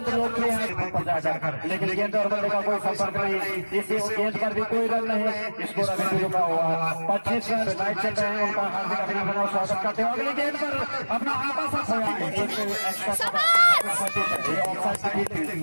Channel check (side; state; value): both; inverted; correlation -1.00